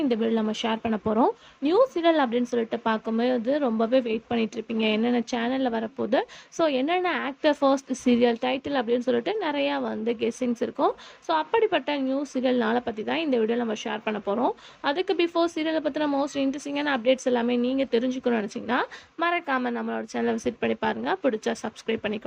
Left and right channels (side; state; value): both; identical; correlation 1.00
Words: இந்த வீடியோவில் நம்ம ஷேர் பண்ண போகிறோம். நியூஸ் சீரியல் அப்படின்னு சொல்லிட்டு பார்க்கும்போது ரொம்பவே வெயிட் பண்ணிட்டு இருப்பீங்க, என்னென்ன சேனலில் வரப்போகுது, ஸோ என்னென்ன ஆக்டர் ஃபர்ஸ்ட் சீரியல் டைட்டில் அப்படின்னு சொல்லிட்டு நிறையா கெஸ்ஸிங்ஸ் இருக்கும். ஸோ அப்படிப்பட்ட நியூஸ் சீரியல் நாளை பற்றி தான் இந்த வீடியோவில் நம்ம ஷேர் பண்ண போகிறோம். அதுக்கு பிஃபோர் சீரியலை பற்றின மோஸ்ட் இன்ட்ரெஸ்டிங்கான அப்டேட்ஸ் எல்லாமே நீங்கள் தெரிஞ்சுக்கணும்னு நினச்சிங்கன்னா மறக்காமல் நம்மளோட சேனலை விசிட் பண்ணி பாருங்கள். பிடிச்சா சப்ஸ்கிரைப்